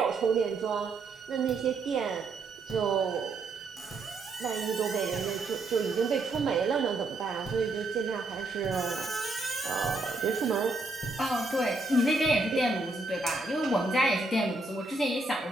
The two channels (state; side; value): quieter; left; 3.2 dB